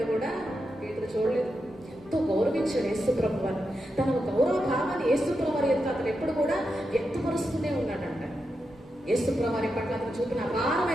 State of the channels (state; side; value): normal; both; correlation 0.87